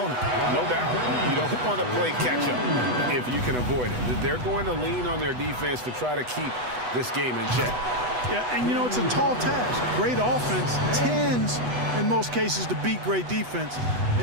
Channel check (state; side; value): late; left; 8.1 ms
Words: No doubt. You don't want to play catch-up if you can avoid it. They're going to lean on their defense to try to keep this game in check. Yeah, and you know, it's a tall task. Great offense tends, in most cases, to beat great defense.